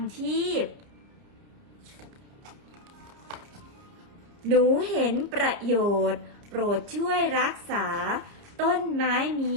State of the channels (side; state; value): left; late; 30 ms